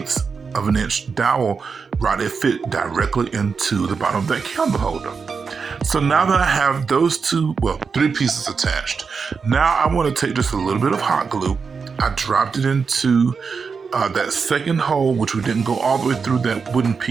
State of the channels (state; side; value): quieter; left; 5.4 dB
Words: of an inch dowel rod, it fit directly into the bottom of that candle holder. So now that I have those three pieces attached, now I want to take just a little bit of hot glue. I dropped it into that second hole, which we didn't go all the way through that wooden